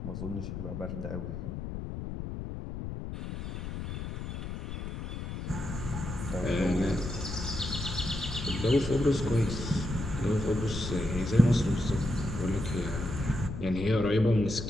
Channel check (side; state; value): left; noise; rumble, 6 dB below the sound